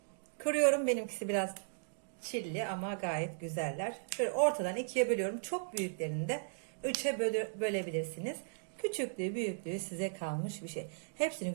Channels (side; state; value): left; silent; digital silence